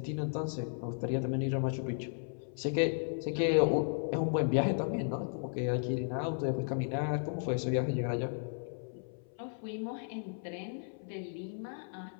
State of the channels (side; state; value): right; silent; 55 dB below the other